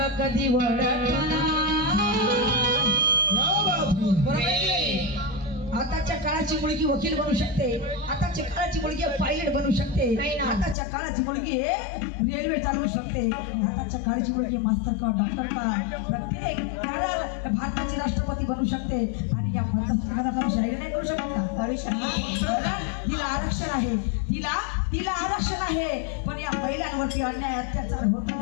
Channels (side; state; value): right; drops out; at 10.8 s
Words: कधी वळणार. आताच्या काळाची मुलगी वकील बनू शकते, आताच्या काळाची मुलगी पायलट बनू शकते, आताच्या काळाची मुलगी रेल्वे चालवू शकते, आताच्या काळाची मुलगी मास्तर का डॉक्टर का प्रत्येक भारताची राष्ट्रपती बनू शकते. आणि या भारताची शाहीर नाही करू शकत का? हिला आरक्षण आहे, तिला आरक्षण आहे. पण या महिलांवरती अन्याय अत्याचार होतो